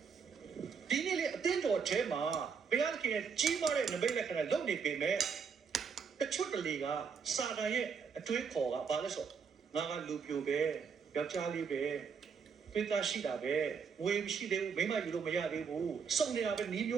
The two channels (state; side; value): quieter; left; 6.1 dB